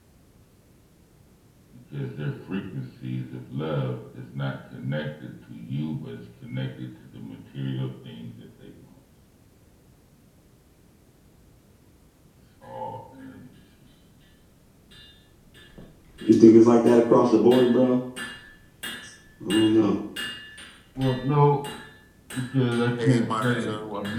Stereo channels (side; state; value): both; identical; correlation 1.00